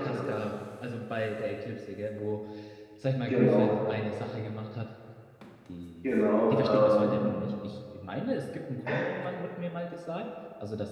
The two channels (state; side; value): identical; both; correlation 1.00